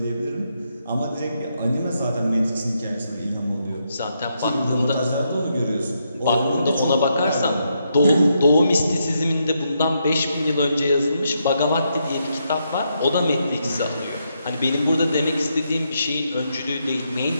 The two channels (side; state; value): both; inverted; correlation -0.80